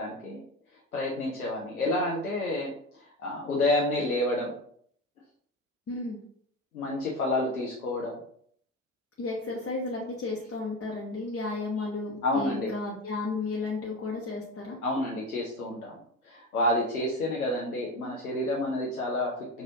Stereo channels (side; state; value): both; normal; correlation 0.24